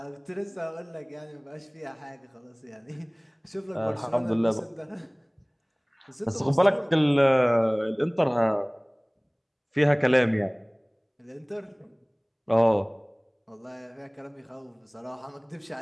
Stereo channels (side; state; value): both; identical; correlation 1.00